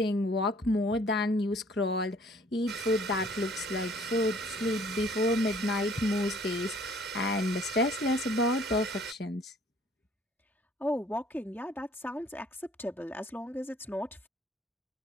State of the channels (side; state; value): both; normal; correlation 0.57